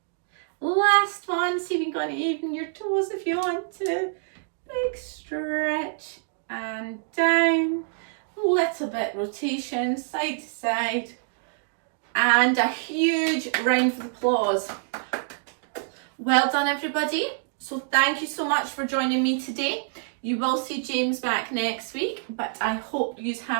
Last one, see if you can even your toes if you want to. Big stretch and down. Little bit rotation, side to side. And a huge round of applause. Well done, everybody. So thank you so much for joining me today. You will see James back next week, but I hope you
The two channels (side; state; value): left; silent; digital silence